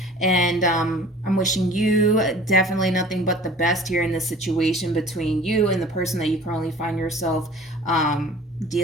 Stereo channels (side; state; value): both; normal; correlation 0.45